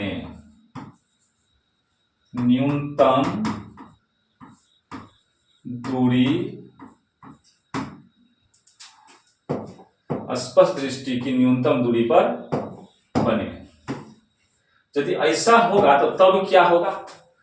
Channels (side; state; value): both; identical; correlation 1.00